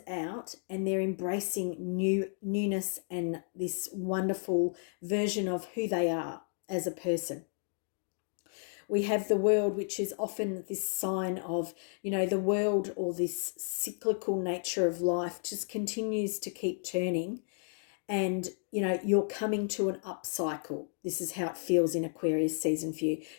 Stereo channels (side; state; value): right; silent; 56 dB below the other